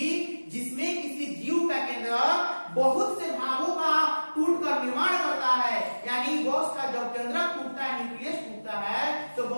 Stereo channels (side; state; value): both; inverted; correlation -1.00